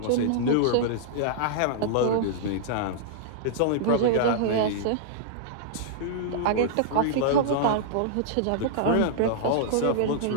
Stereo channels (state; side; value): different; both; correlation -0.02